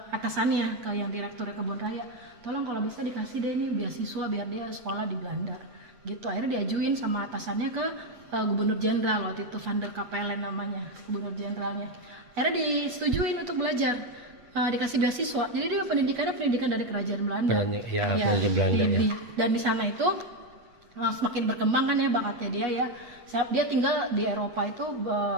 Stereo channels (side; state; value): left; late; 8.3 ms